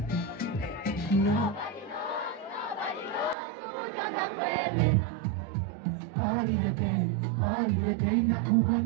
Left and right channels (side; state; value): left; drops out; at 3.4 s